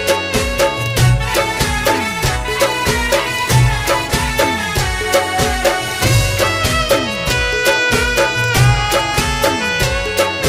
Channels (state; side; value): identical; both; correlation 1.00